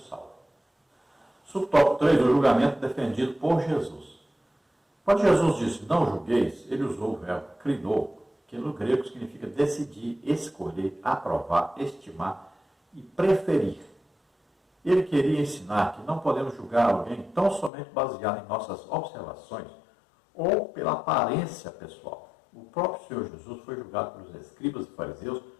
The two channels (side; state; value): right; drops out; at 17.7 s